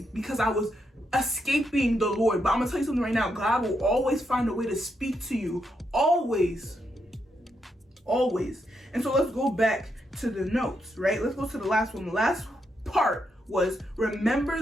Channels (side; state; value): both; normal; correlation 0.81